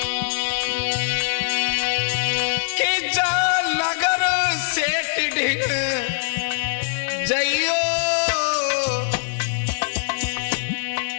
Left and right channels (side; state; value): right; silent; digital silence